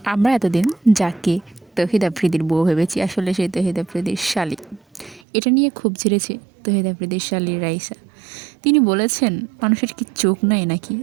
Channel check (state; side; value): drops out; left; at 5.2 s